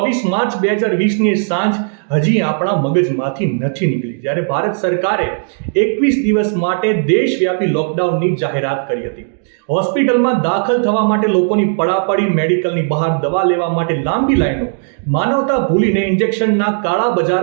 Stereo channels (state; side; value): silent; left; digital silence